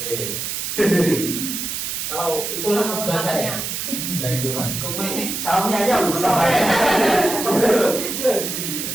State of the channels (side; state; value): right; noise; hiss, 4 dB below the sound